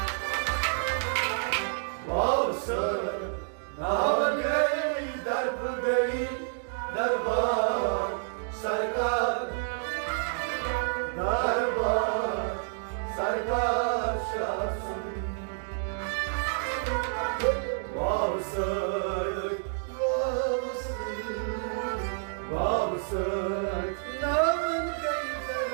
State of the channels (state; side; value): silent; left; digital silence